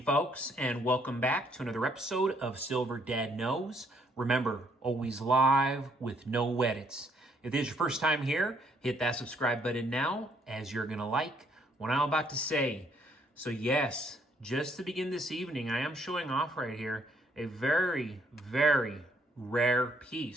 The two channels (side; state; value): both; normal; correlation 0.68